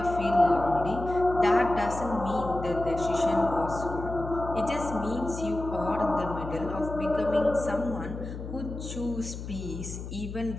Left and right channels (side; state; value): left; noise; hum, 9 dB below the sound